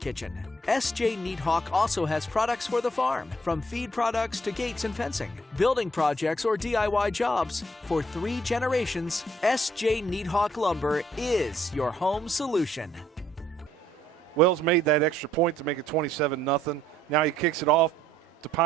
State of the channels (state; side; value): normal; both; correlation 0.66